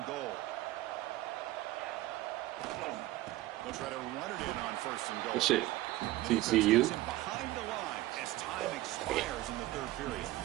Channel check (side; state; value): left; quieter; 16.8 dB